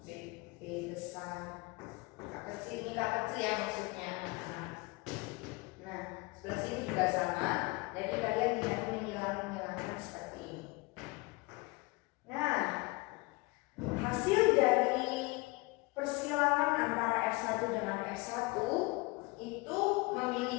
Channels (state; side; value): quieter; right; 25.0 dB